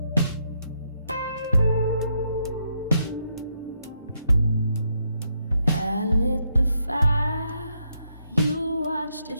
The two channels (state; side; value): inverted; both; correlation -0.78